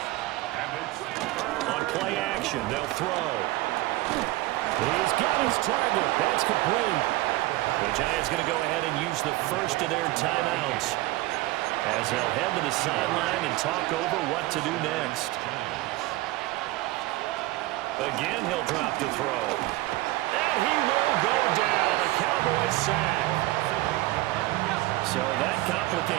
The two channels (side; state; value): left; quieter; 18.8 dB